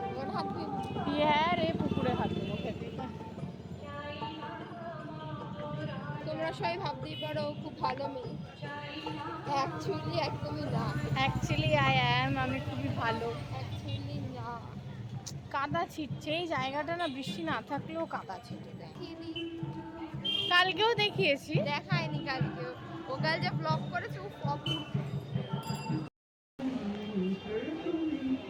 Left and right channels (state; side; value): identical; both; correlation 1.00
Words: হাত ধুয়ে। হ্যাঁ রে, পুকুরে হাত দেবো খেতে। তোমরা সবাই ভাবতেই পারো খুব ভালো মেয়ে, অ্যাকচুয়ালি একদমই না। অ্যাকচুয়ালি আমি খুবই ভালো। অ্যাকচুয়ালি না। কাদা ছিটছে এই জায়গাটা, না বৃষ্টি না থাকলেও কাদা ছিটে দেয়। কালকেও দেখিয়েছি, দেখায়নি কালকেও। ও কাল যে ব্লগ করেছে ও অপূর্ব।